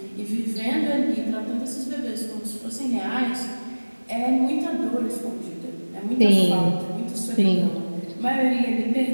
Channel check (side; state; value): both; inverted; correlation -1.00